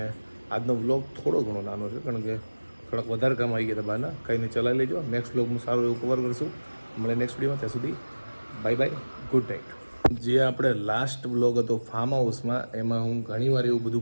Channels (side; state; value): both; inverted; correlation -1.00